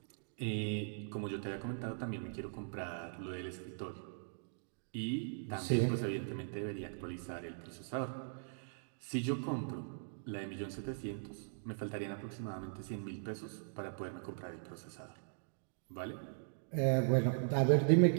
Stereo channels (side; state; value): left; silent; digital silence